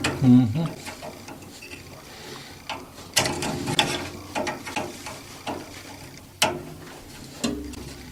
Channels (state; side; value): identical; both; correlation 1.00